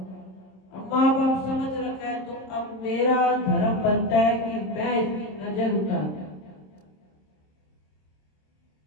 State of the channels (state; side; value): late; right; 26 ms